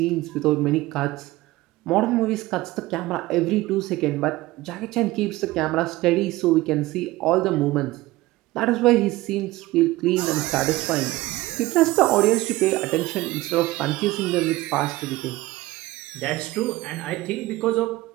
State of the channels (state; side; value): quieter; left; 18.6 dB